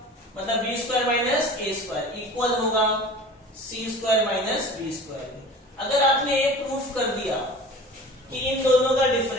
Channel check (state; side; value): normal; both; correlation 0.40